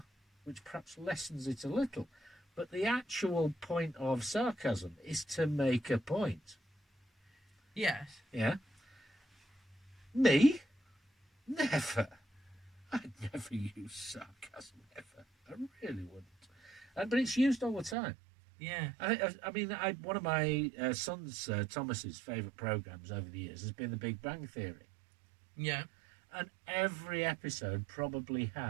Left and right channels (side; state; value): left; drops out; at 17.9 s